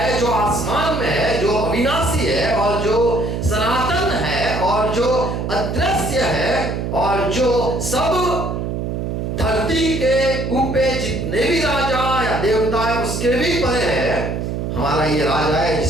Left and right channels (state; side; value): noise; right; hum, 3 dB below the sound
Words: जो आसमान में है, जो अविनाशी है और जो सनातन है और जो अदृश्य है और जो सब धरती के ऊपर जितने भी राजा या देवता है उसके भी परे है। हमारा ये राजा है